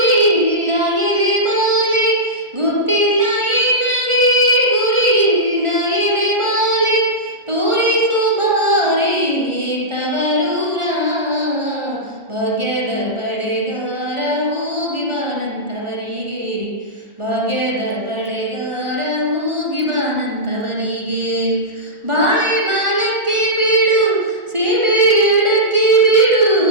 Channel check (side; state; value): left; late; 1.4 ms